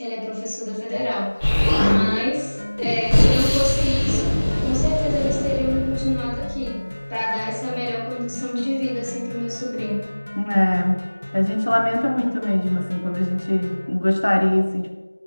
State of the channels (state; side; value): inverted; both; correlation -1.00